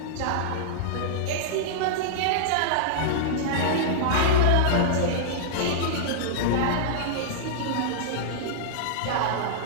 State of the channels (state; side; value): different; both; correlation -0.02